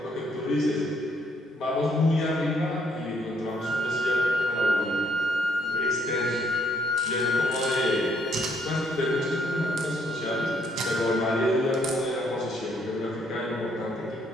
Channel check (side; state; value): both; normal; correlation 0.70